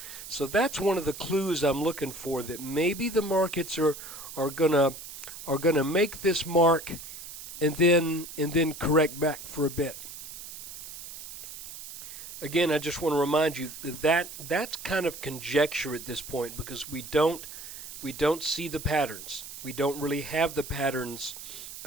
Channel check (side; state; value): right; noise; hiss, 12 dB below the sound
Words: So that's one of the clues I'm looking for, that maybe the markets are gonna make this mark and then correct back for a bit. Again, I just want to remind you that that's kind of conjecture at this point, because we don't see the patterns. We don't really have the patterns